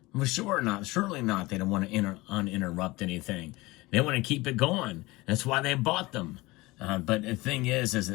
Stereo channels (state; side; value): quieter; right; 21.4 dB